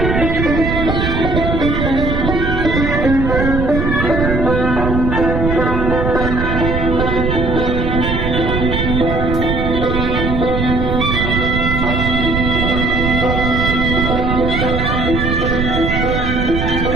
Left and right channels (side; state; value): right; noise; rumble, 1 dB below the sound